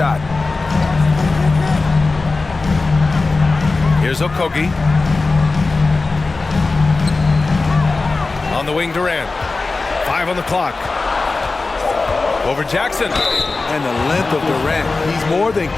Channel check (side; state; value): right; quieter; 3.7 dB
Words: Here's Okogie. On the wing, Durant. 5 on the clock. Over Jackson. And the length of Durant. He's more than